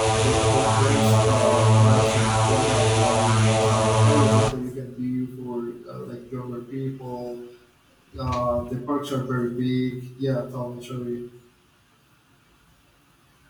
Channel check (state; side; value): identical; both; correlation 1.00